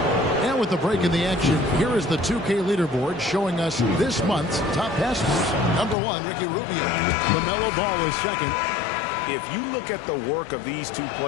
And with the break in the action, here is the 2K leaderboard showing us this month's top passers. Number 1, Ricky Rubio. LaMelo Ball is second. If you look at the work of these two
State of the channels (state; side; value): drops out; right; at 6.0 s